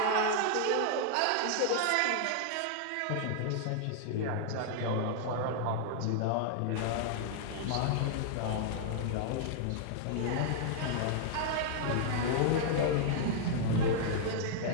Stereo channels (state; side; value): different; both; correlation -0.01